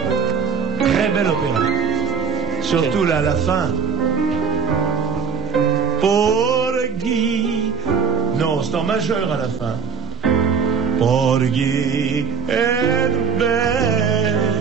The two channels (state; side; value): quieter; left; 6.4 dB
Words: Très bel opéra. Surtout là, à la fin. Porgy. Non, c'est en majeur à la fin. Porgy and Bess.